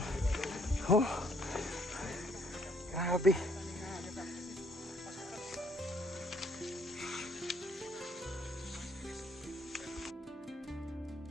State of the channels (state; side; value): normal; both; correlation 0.66